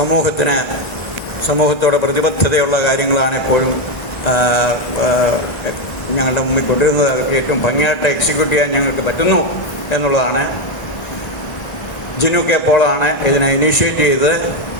സമൂഹത്തോട് പ്രതിബദ്ധതയുള്ള കാര്യങ്ങളാണ് എപ്പോഴും ഞങ്ങളുടെ മുമ്പിൽ കൊണ്ടുവരുന്നത്. ഏറ്റവും ഭംഗിയായിട്ട് എക്സിക്യൂട്ട് ചെയ്യാൻ ഞങ്ങൾക്ക് പറ്റുന്നു എന്നുള്ളതാണ്. ജിനു കെ പോളാണ് ഇതിനെ ഇനീഷ്യേറ്റ് ചെയ്തത്.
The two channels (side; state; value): right; late; 1.4 ms